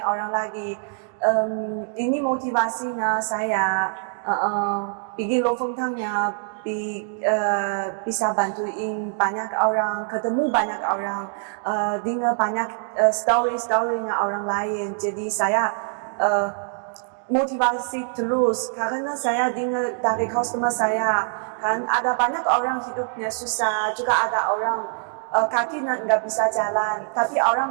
orang lagi. Ini motivasinya saya bikin Lofotennya bisa bantuin banyak orang, ketemu banyak orang, dengar banyak story-storynya orang lain. Jadi saya motivasi terus karena saya dengar dari customer saya kan ada banyak orang hidupnya susah, juga ada orang kaki nggak bisa jalan, tapi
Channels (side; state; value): left; silent; digital silence